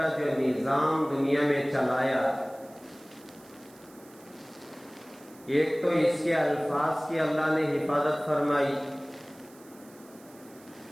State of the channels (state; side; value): noise; right; hiss, 25 dB below the sound